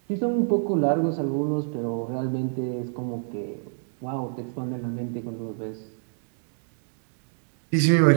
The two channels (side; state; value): left; silent; digital silence